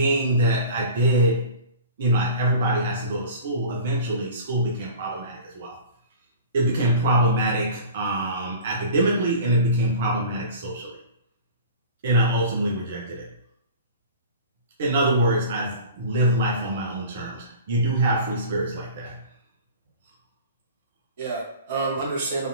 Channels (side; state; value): both; inverted; correlation -0.40